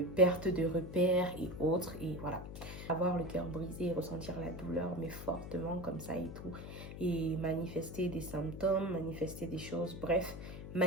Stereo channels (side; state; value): left; noise; hum, 10 dB below the sound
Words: perte de repères et autres. Et voilà. Avoir le cœur brisé, ressentir la douleur, mais fortement comme ça et tout. Et manifester des symptômes, manifester des choses, bref,